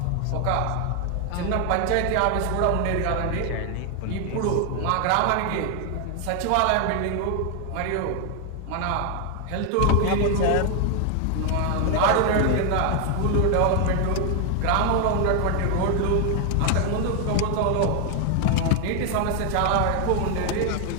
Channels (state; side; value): different; both; correlation 0.00